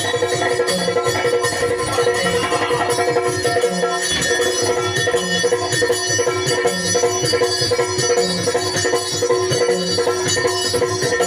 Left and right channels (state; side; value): identical; both; correlation 1.00